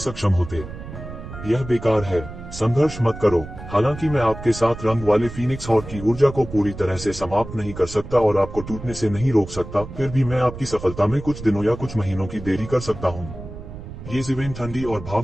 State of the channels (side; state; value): right; noise; rumble, 12 dB below the sound